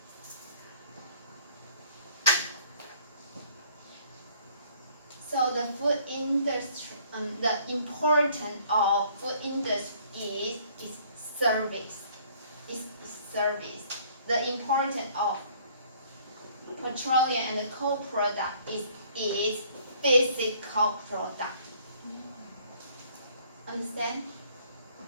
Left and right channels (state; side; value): inverted; both; correlation -0.59